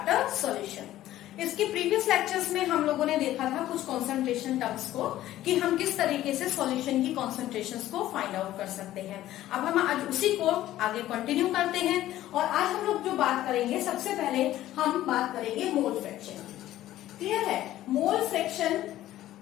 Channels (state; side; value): quieter; right; 14.1 dB